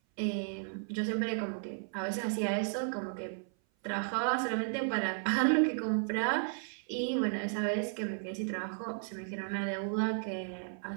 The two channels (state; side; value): silent; left; 55 dB below the other